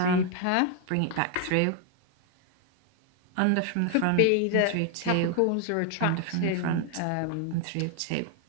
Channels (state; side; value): different; both; correlation 0.00